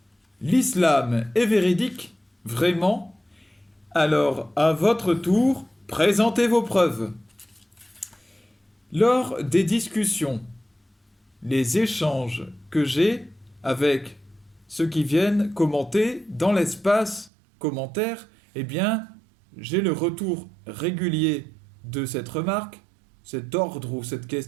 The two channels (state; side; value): drops out; left; at 17.3 s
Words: l'islam est véridique? Vraiment? Alors, à votre tour, présentez vos preuves. Lors des discussions, les échanges que j'ai avec ceux qui viennent commenter dans l'espace commentaire, eh bien, j'ai le retour régulier de cette remarque, cet ordre ou cette